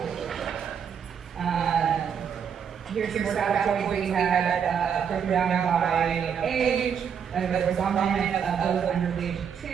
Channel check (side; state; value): left; quieter; 7.5 dB